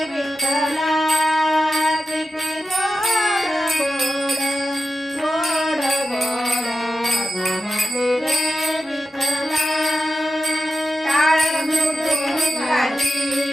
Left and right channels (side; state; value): both; normal; correlation 0.90